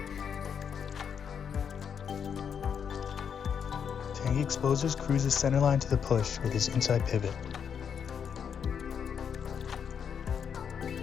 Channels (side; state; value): right; quieter; 7.4 dB